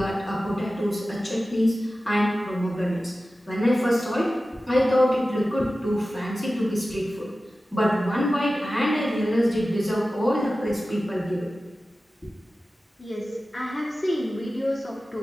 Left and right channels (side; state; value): both; normal; correlation 0.95